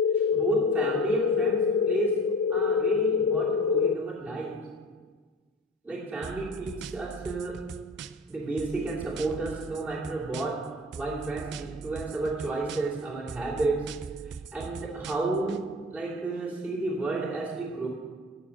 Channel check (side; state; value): both; normal; correlation 0.35